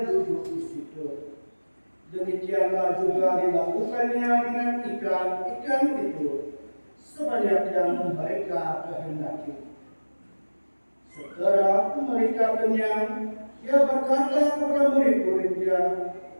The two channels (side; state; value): both; inverted; correlation -1.00